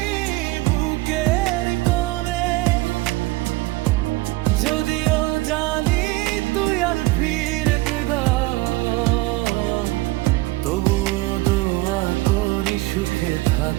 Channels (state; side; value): quieter; left; 20.4 dB